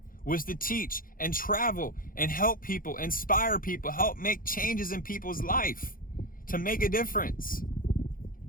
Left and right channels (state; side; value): late; right; 0.41 ms